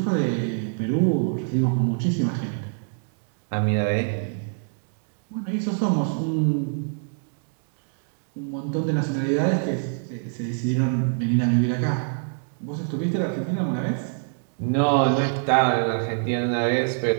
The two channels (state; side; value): silent; left; digital silence